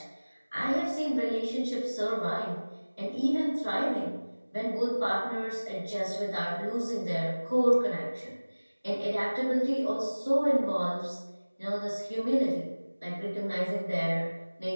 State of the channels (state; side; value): inverted; both; correlation -1.00